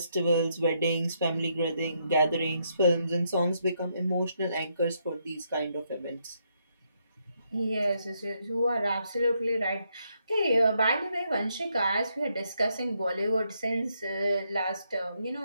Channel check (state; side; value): inverted; both; correlation -0.77